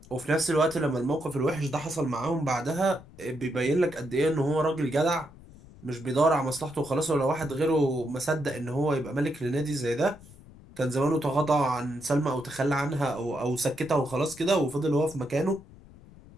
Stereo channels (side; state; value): left; noise; rumble, 21 dB below the sound